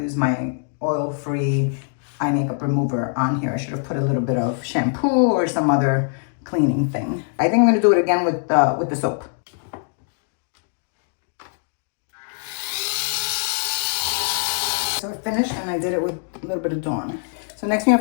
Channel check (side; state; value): right; silent; digital silence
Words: my oil-free eye makeup remover on here. I should have put a little bit of shampoo or some other cleaning thing. I think I'm gonna do it again with the soap. So I finished and I did it with a little bit of Dawn. So next thing you